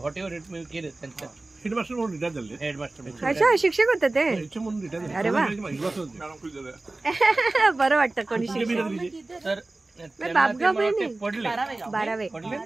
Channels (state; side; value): quieter; left; 3.0 dB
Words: एव्हर इट मी केलं त्यांचं हेडमास्टर म्हणून रिटायर झाले हेडमास्टर. अच्छा शिक्षक होते ते याच्या म्हणून रिटायर झाले. अरे वा. मॅडम खुश झाल्या. बरं वाटतं कोणी कुठे शिक्षक. बिरादरी दिली? तर त्यांना ते बापगाव मला नाही. ते पडले 12वे